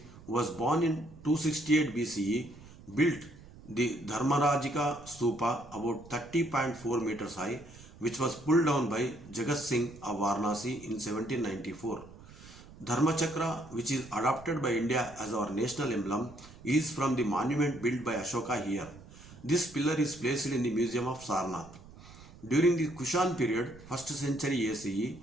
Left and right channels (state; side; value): noise; right; rumble, 19 dB below the sound